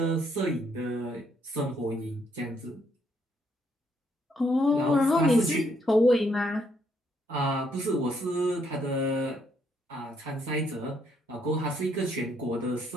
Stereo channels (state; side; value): normal; both; correlation 0.72